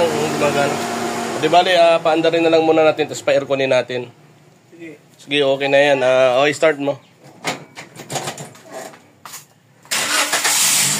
gumagana. Di bale, paandarin na lang muna natin, tapos pa-airconin natin. Sige. Sige, okay na yan. Okay, start mo.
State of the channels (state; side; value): identical; both; correlation 1.00